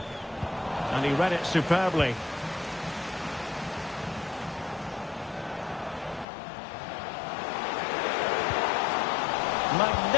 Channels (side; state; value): right; drops out; at 6.2 s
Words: And he read it superbly.